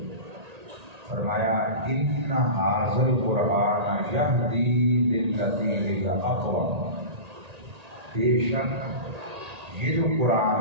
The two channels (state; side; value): late; left; 1.8 ms